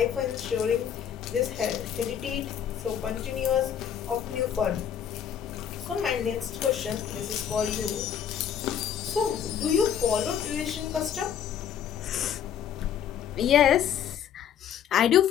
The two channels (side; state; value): right; quieter; 8.8 dB